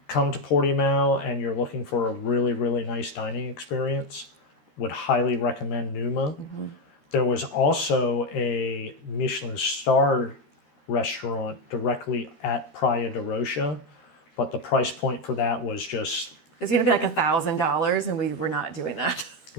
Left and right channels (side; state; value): right; late; 13 ms